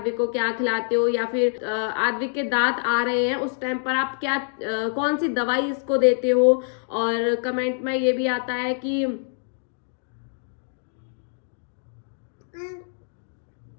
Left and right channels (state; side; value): silent; right; 62 dB below the other